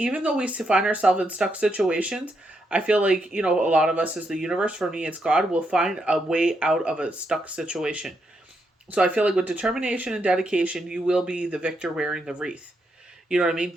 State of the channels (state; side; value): normal; both; correlation 0.80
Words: though we find ourselves in stuck situations, I feel like, a lot of us as the universe, for me, it's God, will find a way out of a stuck situation. So I feel like with determination and dedication, you will be the victor wearing the wreath. You know what I mean?